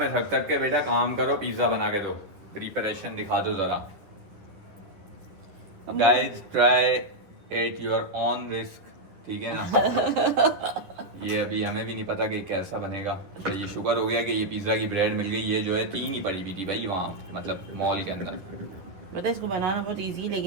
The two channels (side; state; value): left; late; 11 ms